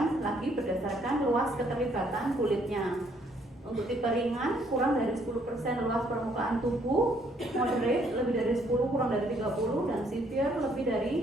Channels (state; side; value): normal; both; correlation 0.67